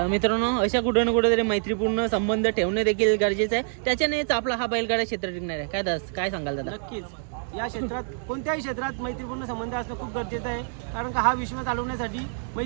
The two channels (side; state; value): left; silent; digital silence